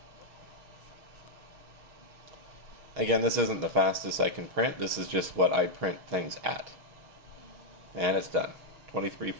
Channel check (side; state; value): left; late; 6.4 ms